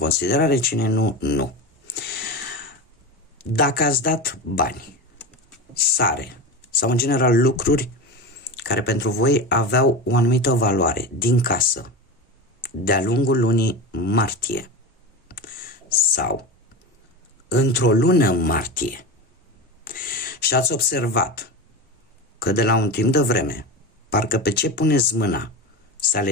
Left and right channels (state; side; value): normal; both; correlation 0.24